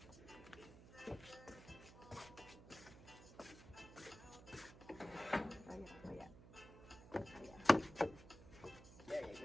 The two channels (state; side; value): noise; right; hum, 17 dB below the sound